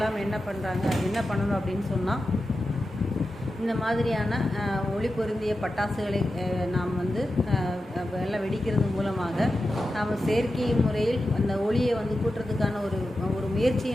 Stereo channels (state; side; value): normal; both; correlation 0.91